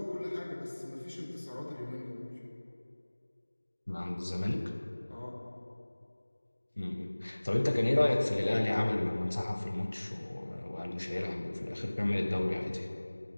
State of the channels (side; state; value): both; inverted; correlation -1.00